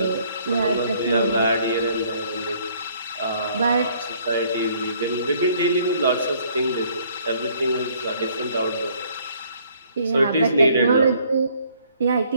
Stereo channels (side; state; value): both; inverted; correlation -0.62